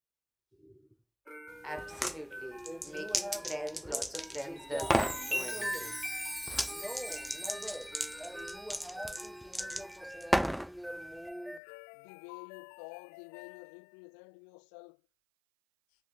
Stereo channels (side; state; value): right; drops out; at 11.6 s